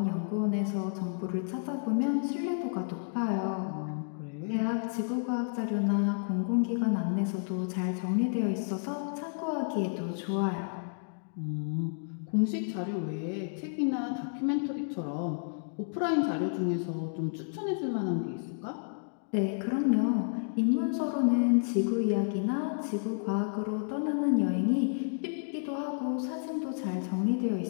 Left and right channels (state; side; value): silent; right; digital silence